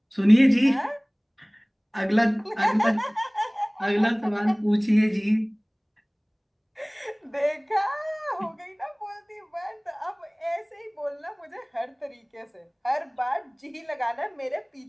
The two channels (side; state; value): both; identical; correlation 1.00